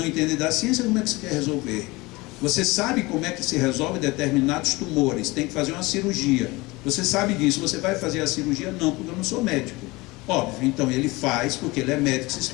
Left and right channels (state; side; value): quieter; right; 22.5 dB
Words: entende da ciência, como é que você quer resolver? Você sabe como é que se resolve determinados tumores, tem que fazer uma cirurgia. Você sabe disso, você vai fazer a cirurgia? Não, porque eu não sou médico. Óbvio, então ele faz porque ele é médico, se